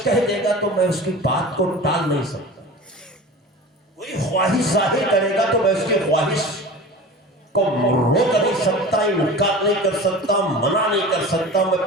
کہہ دے گا تو میں اس کی بات کو ٹال نہیں سکتا، کوئی خواہش ظاہر کرے گا تو میں اس کی خواہش کو روک نہیں سکتا، انکار نہیں کر سکتا، منع نہیں کر سکتا،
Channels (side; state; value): both; normal; correlation 0.36